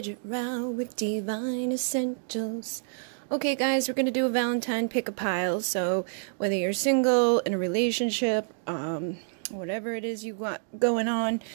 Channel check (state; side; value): silent; left; digital silence